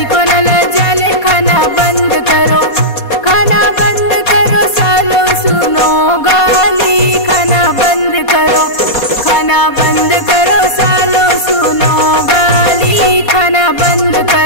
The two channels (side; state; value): right; late; 4.2 ms